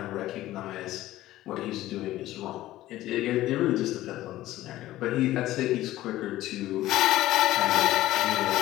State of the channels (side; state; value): right; quieter; 15.4 dB